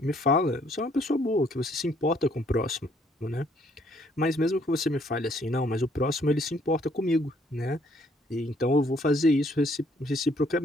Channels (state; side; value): normal; both; correlation 0.65